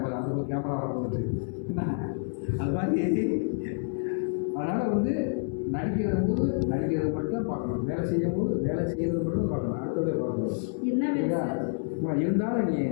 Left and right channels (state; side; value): silent; right; 59 dB below the other